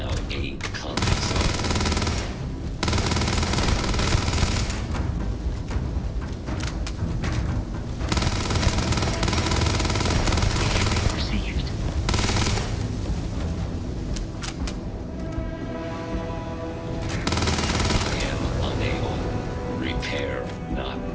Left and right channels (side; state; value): both; identical; correlation 1.00